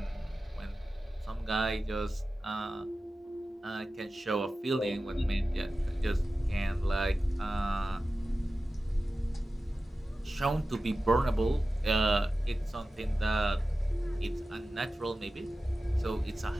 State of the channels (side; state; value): both; normal; correlation 0.94